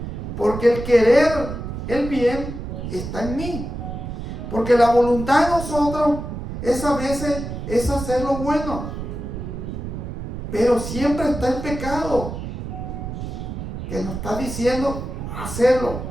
porque el querer el bien está en mí. Porque la voluntad de nosotros es a veces es hacer lo bueno, pero siempre está el pecado que nos está diciendo hacerlo,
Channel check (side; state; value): right; noise; rumble, 7 dB below the sound